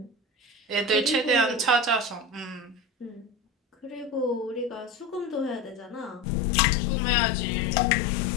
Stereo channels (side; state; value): right; drops out; at 6.2 s